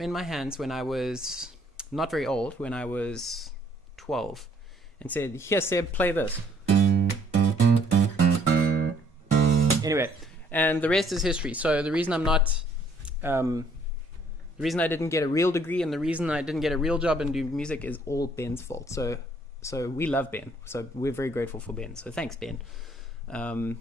my hands when I was not very old, when I was 12, and said, "Here, Seb, play this." Anyway, and the rest is history. So the reason I'm not the reason I didn't get a real degree and the reason I didn't get a real job and do music is all Ben's fault. So we love Ben. So we're very grateful for Ben. So thanks, Ben. And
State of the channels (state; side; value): normal; both; correlation 0.64